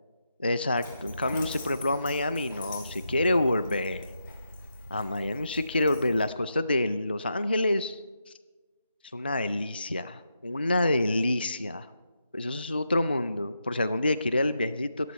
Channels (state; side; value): inverted; both; correlation -0.84